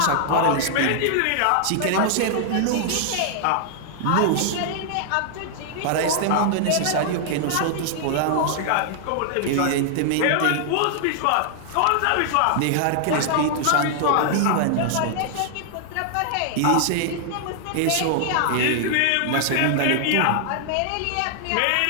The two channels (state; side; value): different; both; correlation -0.01